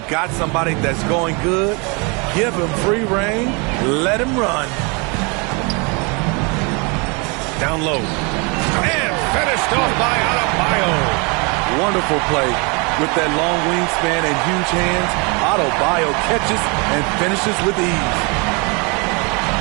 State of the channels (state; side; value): quieter; left; 30.9 dB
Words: got somebody that's going good, give him free reign. Let him run. Down low. And finished off by Adebayo. Wonderful play. With that long wingspan and huge hands, Adebayo catches and finishes with ease.